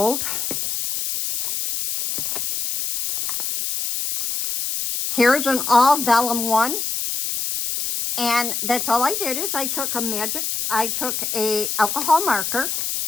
Here's an all vellum one, and that's all I did is I took a alcohol marker,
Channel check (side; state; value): left; noise; hiss, 2 dB below the sound